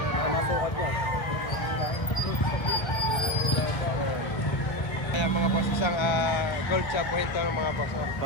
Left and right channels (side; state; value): right; late; 1.1 ms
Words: Ang masukat niya. Ayan mga boss, isang gold chop buhinto ng mga boss.